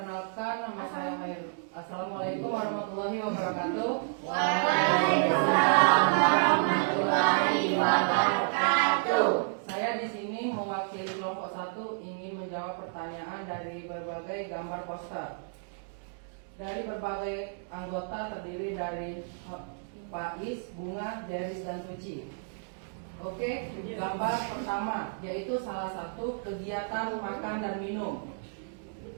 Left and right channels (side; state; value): left; silent; digital silence